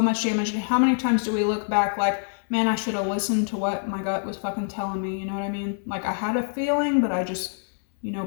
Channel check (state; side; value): silent; right; digital silence